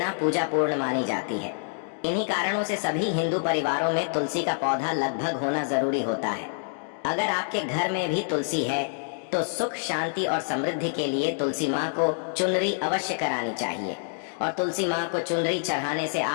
पूजा पूर्ण मानी जाती है। इन्हीं कारणों से सभी हिंदू परिवारों में तुलसी का पौधा लगभग होना जरूरी होता है। अगर आपके घर में भी तुलसी है तो सुख, शांति और समृद्धि के लिए तुलसी माँ को चुनरी अवश्य करानी चाहिए और तुलसी माँ को चुनरी चढ़ाने से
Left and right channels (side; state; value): right; silent; digital silence